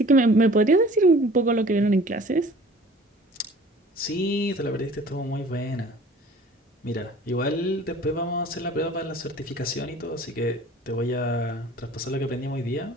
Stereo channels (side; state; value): both; normal; correlation 0.48